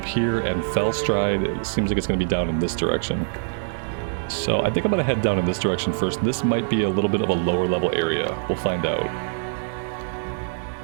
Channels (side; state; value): left; silent; digital silence